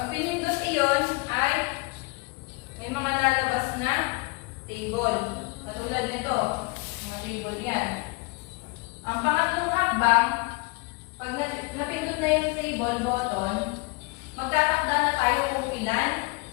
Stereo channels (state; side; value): quieter; right; 27.3 dB